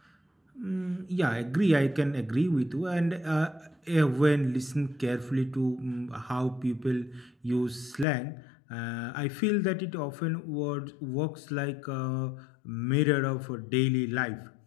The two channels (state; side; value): drops out; right; at 8.1 s